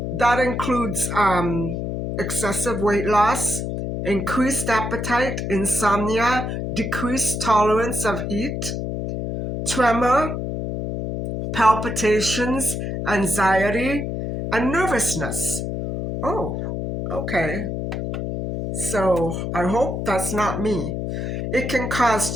that includes excessive weight loss, increased appetite, insomnia, decreased tolerance of heat, tremor, palpitations, anxiety, and nervousness. Oh, okay. So I hope that's not me. It can cause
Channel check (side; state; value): left; noise; hum, 3 dB below the sound